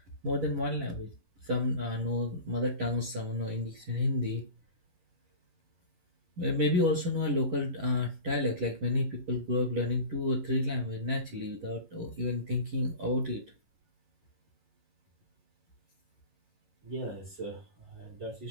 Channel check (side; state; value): left; late; 10 ms